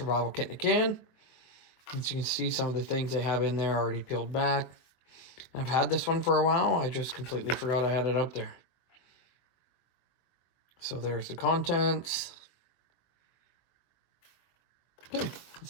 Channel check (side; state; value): right; late; 23 ms